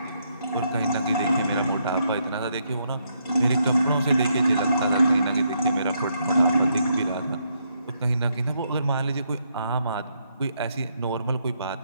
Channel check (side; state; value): both; inverted; correlation -0.76